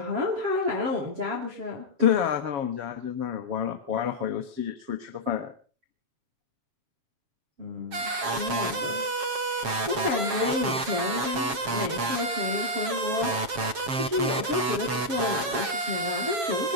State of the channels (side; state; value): left; late; 7.4 ms